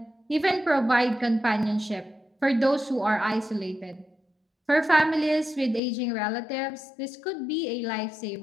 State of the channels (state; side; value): drops out; right; at 5.8 s